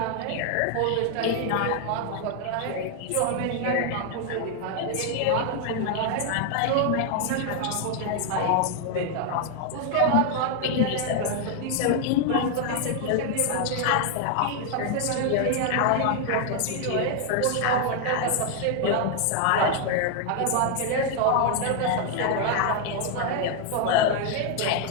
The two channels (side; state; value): both; different; correlation 0.00